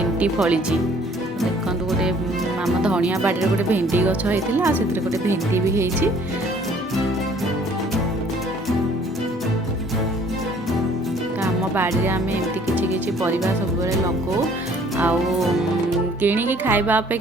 फली देखो गोटे आम धनिया बाड़ी गोटे भेंडी गछ होता से गोटे भेंडी भी होती। आम बाड़ी आम एमती किसी परिवार सब लगो किणिकी खाइबा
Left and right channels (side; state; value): both; normal; correlation 0.57